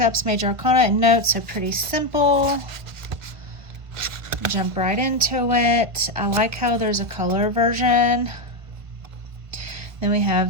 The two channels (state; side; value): late; left; 1.3 ms